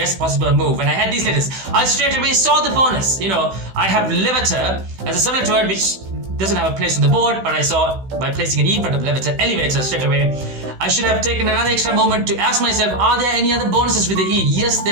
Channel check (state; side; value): late; left; 16 ms